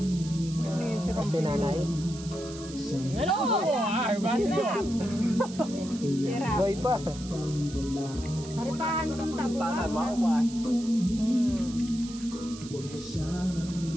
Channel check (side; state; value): right; noise; hiss, 15 dB below the sound